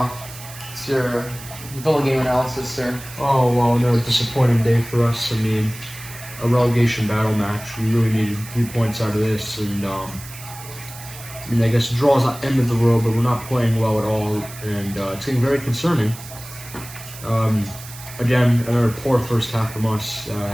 it's your Villa game analysis, sir. Oh, well, no, disappointing day for us. A relegation battle match. We really needed 3 points out of this, and I guess a draw is not the end of the world, but we're not playing well at all, and it's getting very concerning. Again, another poor first half from us.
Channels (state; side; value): noise; right; hiss, 15 dB below the sound